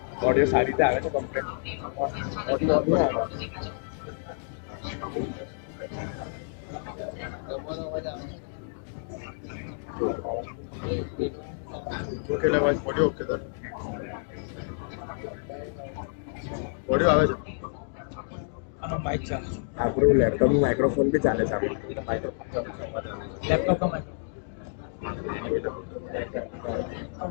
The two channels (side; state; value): right; silent; digital silence